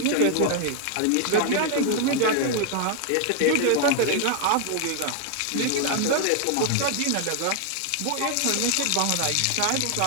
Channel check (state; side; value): different; both; correlation 0.00